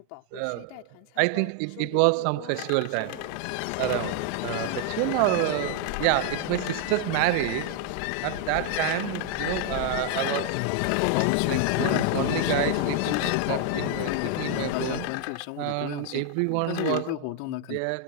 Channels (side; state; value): both; different; correlation 0.00